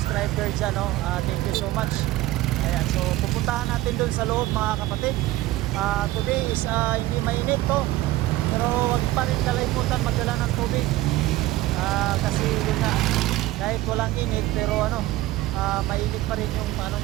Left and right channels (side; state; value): left; quieter; 16.7 dB